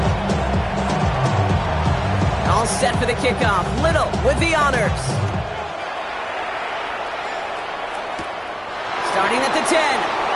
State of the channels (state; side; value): identical; both; correlation 1.00